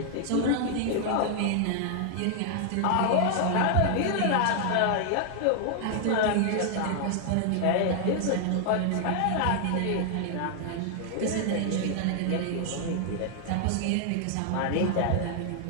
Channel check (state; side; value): different; both; correlation 0.00